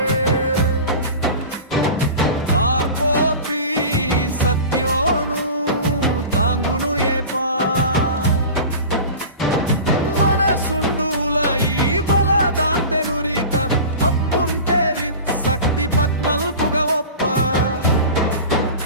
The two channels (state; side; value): inverted; both; correlation -0.34